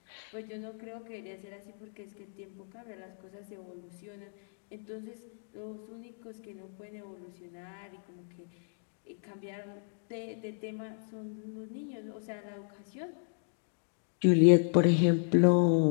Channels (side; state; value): right; silent; digital silence